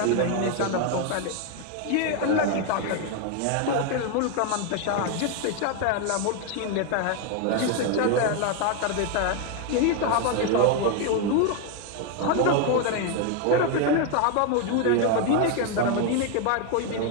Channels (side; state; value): both; different; correlation 0.01